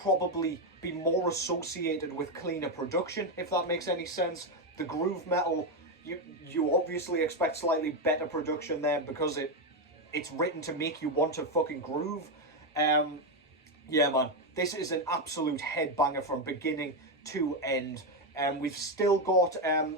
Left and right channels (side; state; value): both; normal; correlation 0.07